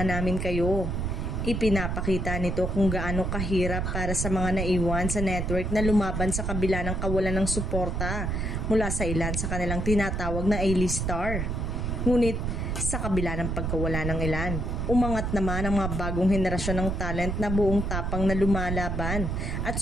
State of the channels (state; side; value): noise; right; rumble, 1 dB below the sound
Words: namin kayo. Ipinapakita nito kung gaano kahirap para sa mga naiwan sa network na lumaban sa kabila ng kawalan ng suporta mula sa ilan sa kanilang tinatawag na A-list star. Ngunit sa kabila ng pagkawala ng ilan, umangat naman ang mga bagong henerasyon ng talent na buong tapang na lumalaban at